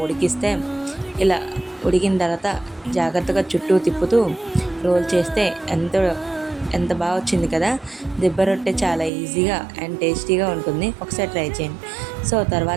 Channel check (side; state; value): left; drops out; at 9.1 s